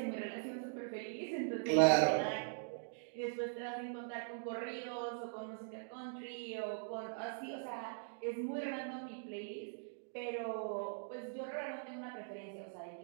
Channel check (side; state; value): left; silent; digital silence